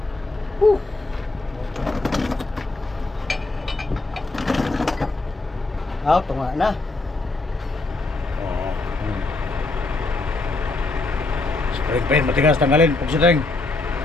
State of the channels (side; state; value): right; quieter; 3.2 dB